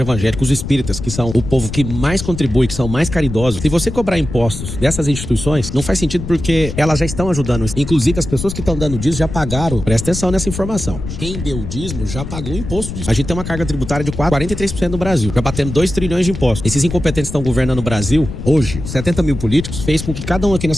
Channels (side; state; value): left; noise; rumble, 8 dB below the sound